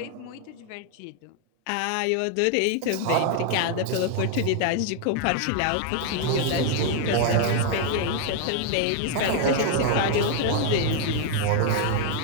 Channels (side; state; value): both; different; correlation 0.00